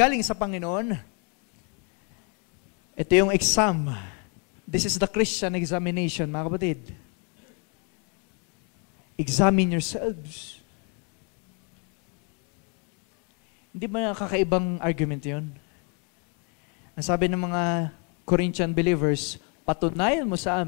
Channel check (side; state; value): right; quieter; 36.8 dB